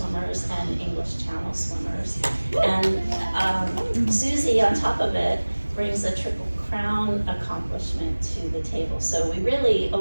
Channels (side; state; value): both; inverted; correlation -1.00